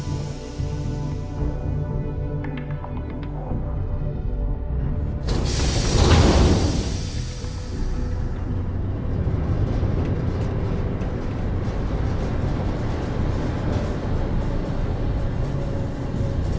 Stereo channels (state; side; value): identical; both; correlation 1.00